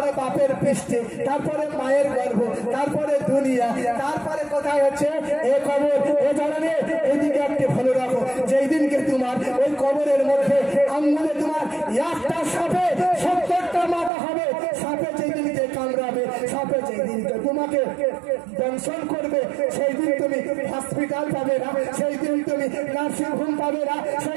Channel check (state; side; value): drops out; left; at 14.1 s